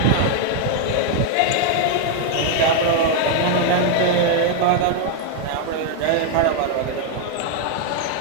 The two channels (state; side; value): different; both; correlation 0.00